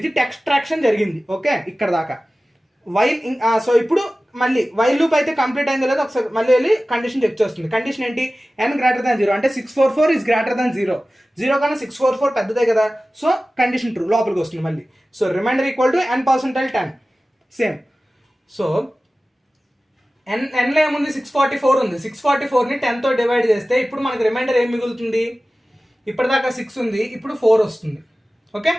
ఎక్స్ట్రాక్షన్ జరిగింది. ఓకే, ఇక్కడ దాకా వైల్. సో ఇప్పుడు మళ్ళీ వైల్ లూప్ అయితే కంప్లీట్ అయిందో లేదో ఒకసారి మళ్ళీ వెళ్ళి కండిషన్ చెక్ చేస్తుంది. కండిషన్ ఏంటి, n గ్రేటర్ దాన్ 0 అంటే 644 ఈజ్ గ్రేటర్ దాన్ 0. 0 కన్నా 644 పెద్దదే కదా. సో కండిషన్ ట్రూ, లోపలికి వస్తుంది మళ్ళీ. So remainder equal to n%10 same. So nలో ఏముంది, 644 ఉంది. 644ని 10తో డివైడ్ చేస్తే ఇప్పుడు మనకి రిమైండర్ ఏం మిగులుతుంది, ఇప్పటిదాకా 6 ఉంది, ఇప్పుడు 4 వస్తుంది. Okay,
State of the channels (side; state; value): both; normal; correlation 0.96